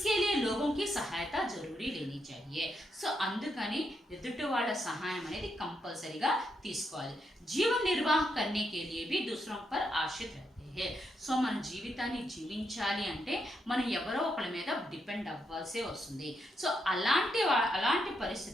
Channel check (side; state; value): both; normal; correlation 0.80